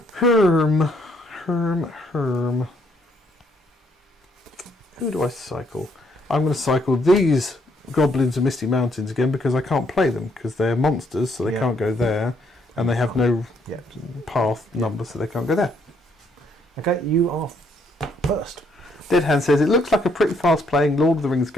Herm. Who do I cycle? I'm going to cycle these Goblins of Misty Mountains again because I can't play them because they're monsters, so they can't go there. And they have no path number, so they can't go there. Okay, you are first. Dead Hand says, it looks like a pretty fast playing Lord of the Rings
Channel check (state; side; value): normal; both; correlation 0.70